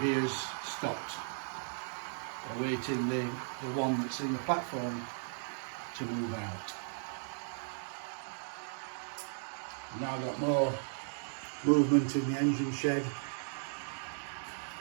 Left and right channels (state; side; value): silent; left; digital silence